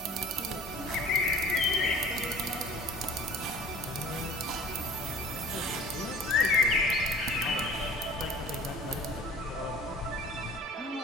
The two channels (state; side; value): normal; both; correlation 0.47